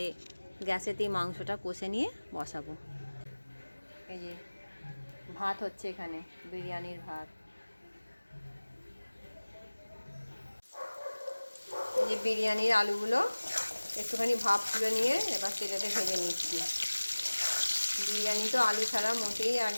গ্যাসেতেই মাংসটা কষে নিয়ে বসাবো। এই যে ভাত হচ্ছে এখানে, বিরিয়ানির ভাত। যে বিরিয়ানির আলুগুলো একটুখানি ভাপ তুলে নিয়ে এবার তেলেতে ভেজে নিচ্ছি। বিরিয়ানি তো আলু ছাড়া মোটেই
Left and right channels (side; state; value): both; inverted; correlation -1.00